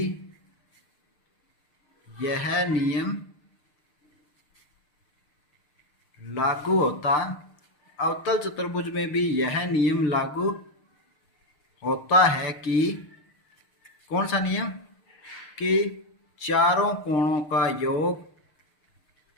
यह नियम लागू होता, अवतल चतुर्भुज में भी यह नियम लागू होता है कि कौन सा नियम, कि चारों कोणों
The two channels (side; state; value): right; late; 6.7 ms